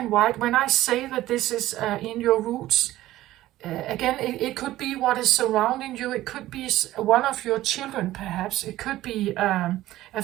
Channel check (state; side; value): quieter; left; 15.4 dB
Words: white. When I say that this is in your roots, again, it could be what is surrounding you. It could be one of your children, perhaps. It could be a